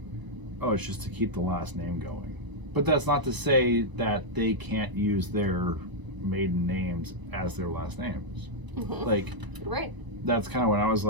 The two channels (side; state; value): left; late; 1.0 ms